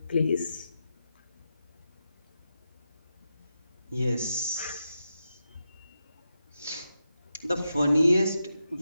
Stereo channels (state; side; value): inverted; both; correlation -0.88